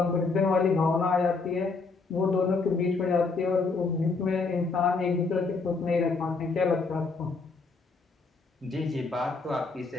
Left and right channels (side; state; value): right; quieter; 4.2 dB